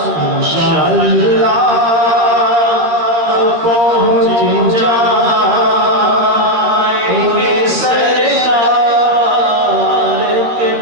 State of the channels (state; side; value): late; left; 13 ms